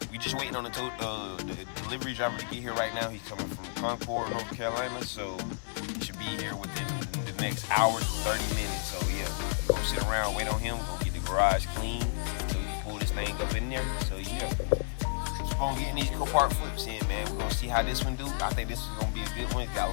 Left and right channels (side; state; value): right; silent; digital silence